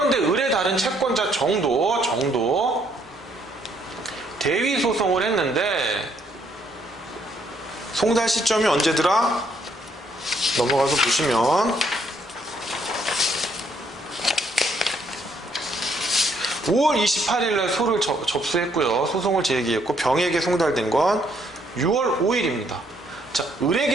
을의 다른 채권자 정도 대위 소송을 했는데 송달 시점이 언제더라? 넘어가서 보시면 5월 28일날 소를 접수했고요. 소송을 제기했고 병에게 송달된 건 6월 5일입니다. 자,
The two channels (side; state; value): both; normal; correlation 0.69